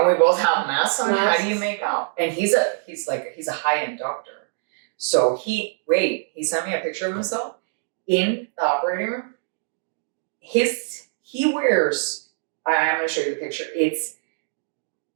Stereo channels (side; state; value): left; silent; digital silence